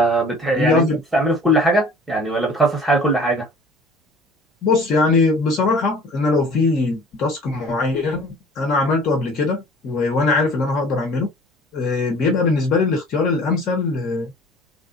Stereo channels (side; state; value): both; normal; correlation 0.48